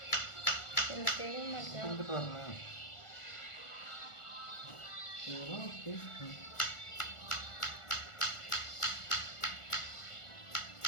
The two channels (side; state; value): right; late; 1.4 ms